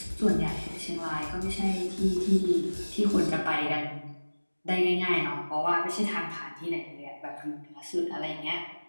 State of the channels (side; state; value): both; inverted; correlation -1.00